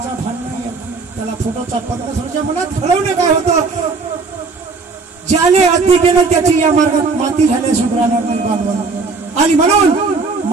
भान नाही त्याला. फोटोचा परमेश्वराच्या मनात घडवणे काय होतं, ज्याने अति केलं त्याची या मार्गात माती झाल्या सुधारणार नाही बांधवांना. आणि म्हणून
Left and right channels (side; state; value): left; quieter; 4.3 dB